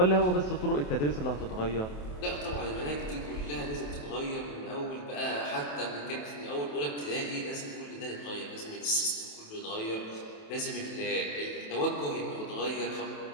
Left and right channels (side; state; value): right; late; 28 ms